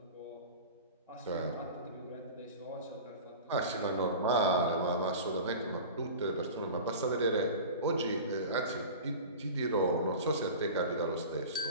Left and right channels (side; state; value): both; inverted; correlation -0.34